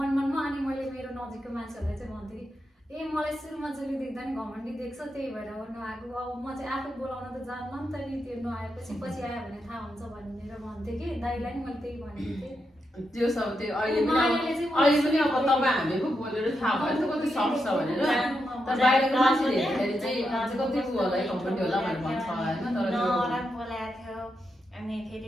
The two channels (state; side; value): normal; both; correlation 0.85